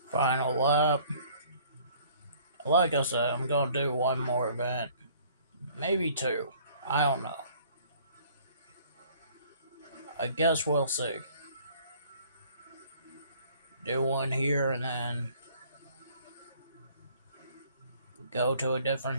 Final lap. Like I said, I'm going to do one more event. Maybe 2. I don't know. I guess we'll see. Do one here and then go to a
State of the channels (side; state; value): both; inverted; correlation -0.56